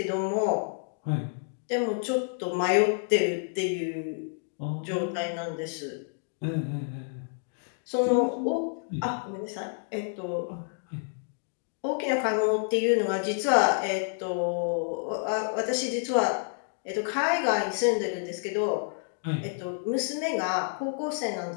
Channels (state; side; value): silent; right; digital silence